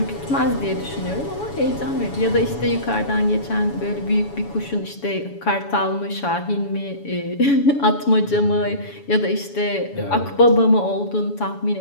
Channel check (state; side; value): late; right; 7.1 ms